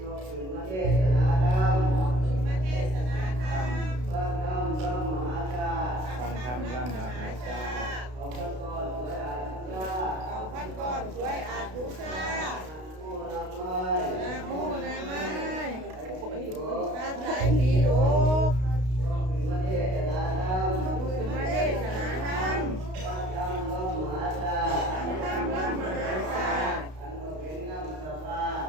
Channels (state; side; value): late; left; 32 ms